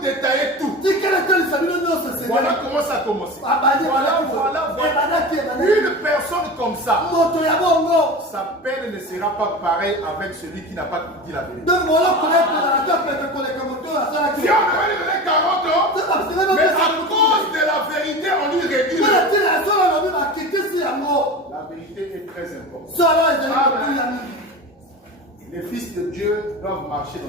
tout. Voilà comment ça a commencé. Voilà. Une personne comme ça, sa peine ne sera pas pareille avec celui qui n'a pas dit la vérité. Si on avait donné 40 ans, mais à cause de la vérité, on lui réduit. La vérité est très importante. Les fils de Dieu doivent marcher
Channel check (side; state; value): both; normal; correlation 0.30